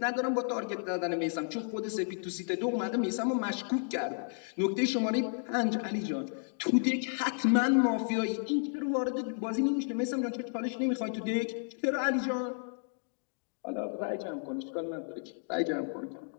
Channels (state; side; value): silent; right; 56 dB below the other